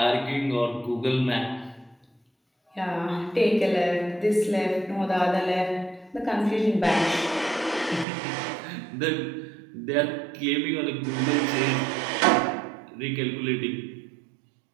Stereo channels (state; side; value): drops out; left; at 8.1 s